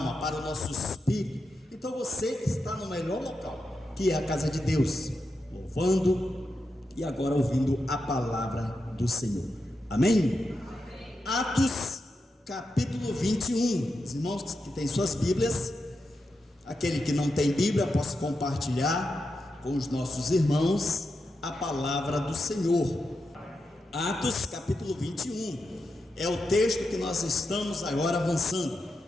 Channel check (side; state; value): both; normal; correlation 0.87